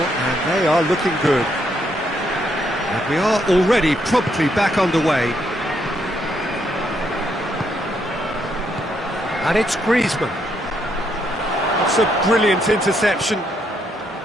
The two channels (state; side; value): normal; both; correlation 0.75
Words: they are looking good. And we are already promptly back underway. And it's Griezmann. That's a brilliant interception.